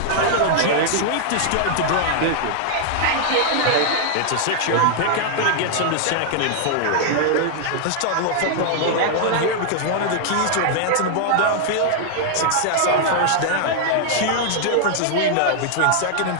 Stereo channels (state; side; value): different; both; correlation 0.00